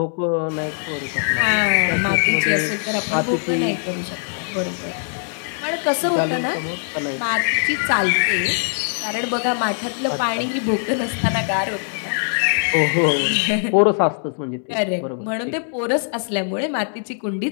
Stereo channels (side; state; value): right; silent; digital silence